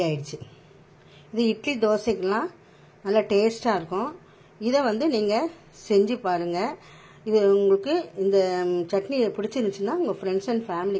ஆயிடுச்சு. இது இட்லி தோசைக்கெல்லாம் நல்லா டேஸ்ட்டாக இருக்கும். இதை வந்து நீங்கள் செஞ்சு பாருங்கள். இது உங்களுக்கு இந்த சட்னி பிடிச்சிருந்துச்சுன்னா உங்கள் ஃப்ரெண்ட்ஸ் அண்ட்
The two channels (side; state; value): both; identical; correlation 1.00